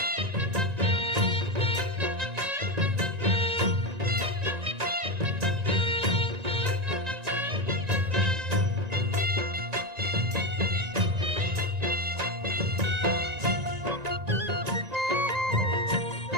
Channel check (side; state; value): left; late; 1.9 ms